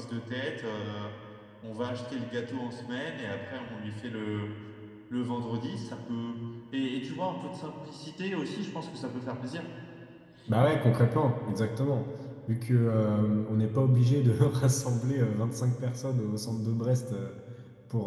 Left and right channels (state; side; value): identical; both; correlation 1.00